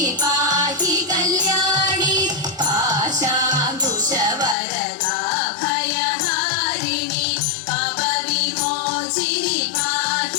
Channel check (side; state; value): right; drops out; at 4.5 s